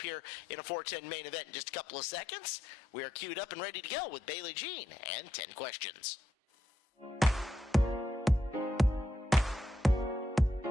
here in a 410 main event in just a couple of seconds. We are queued up and ready to go with Bailey Jean and 10 questions.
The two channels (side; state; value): both; normal; correlation 0.81